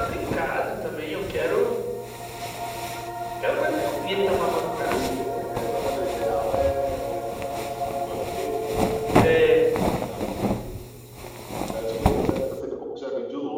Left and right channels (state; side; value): identical; both; correlation 1.00